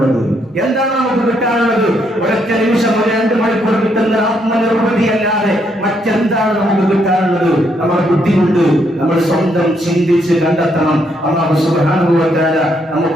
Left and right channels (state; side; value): normal; both; correlation 0.74